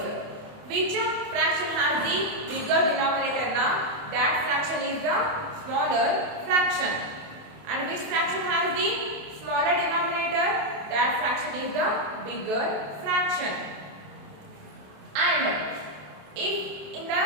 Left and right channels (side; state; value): left; late; 28 ms